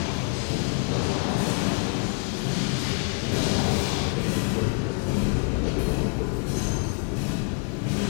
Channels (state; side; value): quieter; right; 37.7 dB